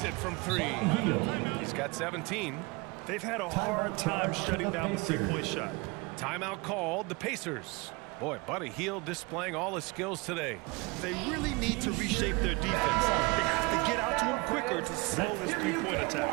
it from 3. He's got 17. They've had a hard time shutting down the 3-point shot. Timeout called the Pacers. Boy, Buddy Hield displaying all his skills today. They really need to reshape their defense. They have to get out to him quicker to slow this 3-point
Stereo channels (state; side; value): quieter; left; 26.0 dB